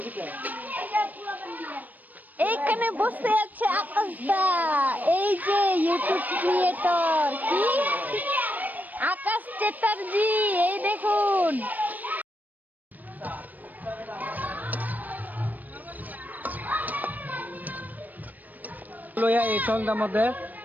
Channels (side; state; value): left; late; 0.083 ms